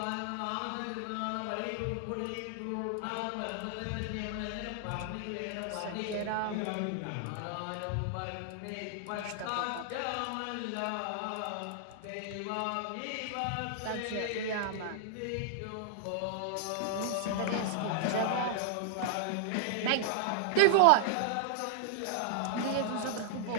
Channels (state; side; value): different; both; correlation -0.01